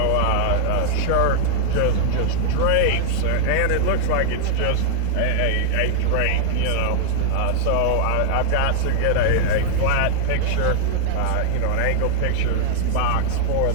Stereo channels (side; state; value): both; different; correlation -0.01